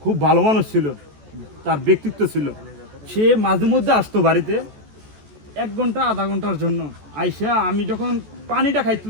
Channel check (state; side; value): late; left; 14 ms